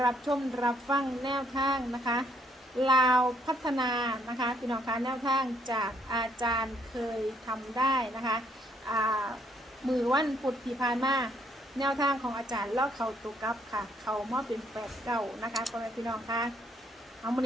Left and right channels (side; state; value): both; normal; correlation 0.69